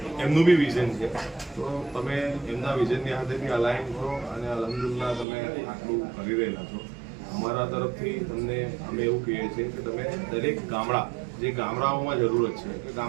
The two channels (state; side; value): drops out; left; at 5.2 s